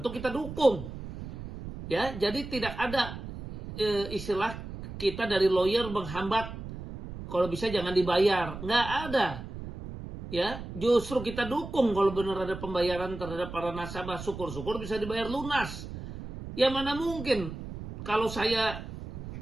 kita dukung. Ya, jadi tidak ada istilah kita dari lawyer menghambat kalau bisa jangan dibayar. Nggak ada. Ya, justru kita dukung kalau benar ada pembayaran terhadap para nasabah, syukur-syukur bisa dibayar lunas. Ya mana mungkin kalau saya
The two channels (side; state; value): right; noise; rumble, 10 dB below the sound